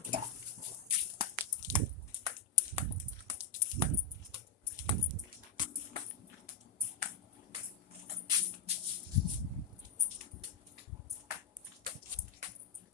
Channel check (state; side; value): quieter; right; 4.8 dB